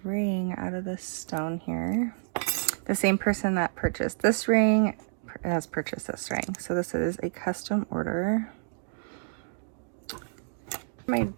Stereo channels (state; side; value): silent; left; digital silence